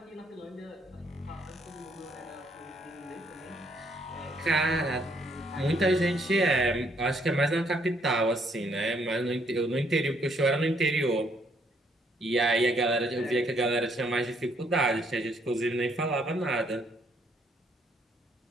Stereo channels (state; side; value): normal; both; correlation 0.69